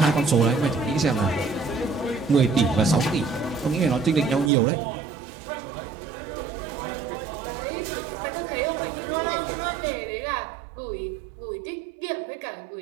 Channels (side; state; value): left; drops out; at 4.5 s